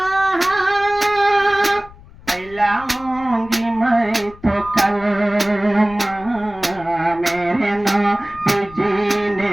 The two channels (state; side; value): noise; left; rumble, 21 dB below the sound